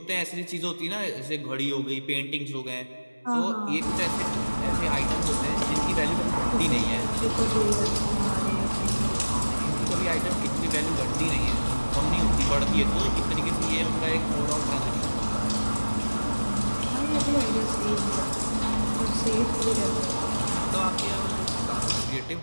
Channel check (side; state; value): both; inverted; correlation -1.00